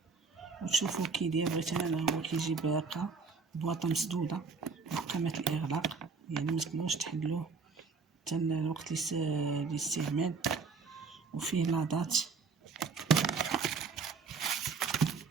وتشوفوا كي داير. بغيت انا هو كيجي باقه بواطه مسدوده محكمه الاغلاق، يعني ما تقدروش تحلوه حتى الوقت الاستعمال. وفيه لاضات،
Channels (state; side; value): quieter; left; 4.8 dB